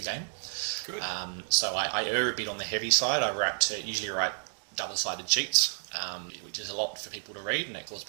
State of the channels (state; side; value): silent; left; digital silence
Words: game. Good. So I err a bit on the heavy side. I usually write double-sided sheets, which is a lot for people to read, and that causes